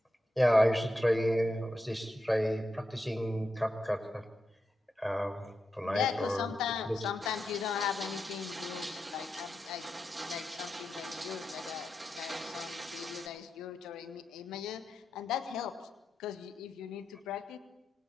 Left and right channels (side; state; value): both; normal; correlation 0.88